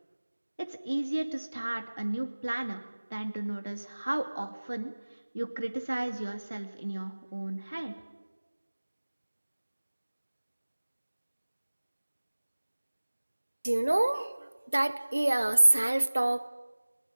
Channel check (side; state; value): both; inverted; correlation -1.00